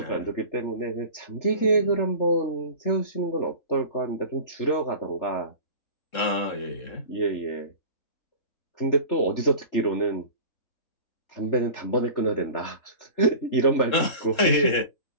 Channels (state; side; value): late; right; 3.7 ms